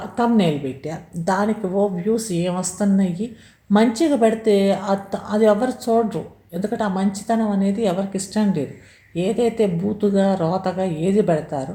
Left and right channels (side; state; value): both; identical; correlation 1.00